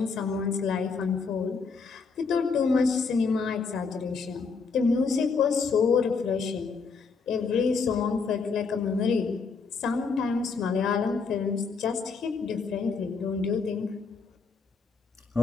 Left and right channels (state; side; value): quieter; right; 4.9 dB